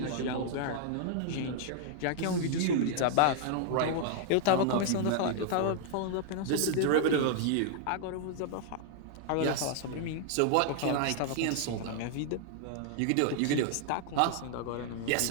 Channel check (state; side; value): different; both; correlation -0.01